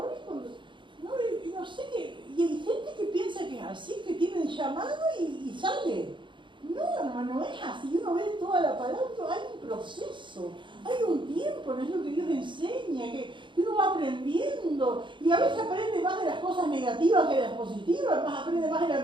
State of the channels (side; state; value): left; late; 0.23 ms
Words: ni cuando... No sé qué... Y hay gente que piensa que es así, que tiene el llamado y sale. No, hermano, no es así. Uno ve toda la palabra, hay un proceso, hay un tiempo, no es lo que Dios enseña, que uno va aprendiendo. Y a veces aprende más de las cosas negativas que de las positivas, aprende más de la